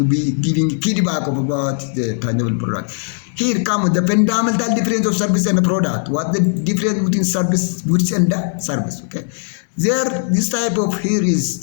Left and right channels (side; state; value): right; silent; digital silence